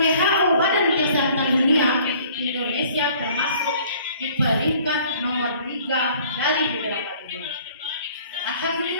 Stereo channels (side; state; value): both; inverted; correlation -0.54